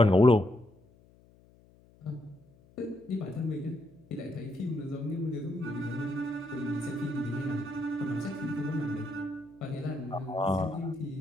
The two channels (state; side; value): noise; left; hum, 28 dB below the sound